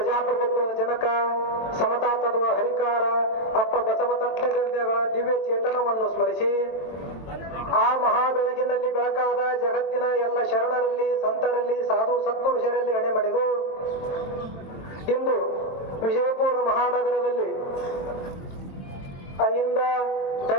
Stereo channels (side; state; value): right; late; 23 ms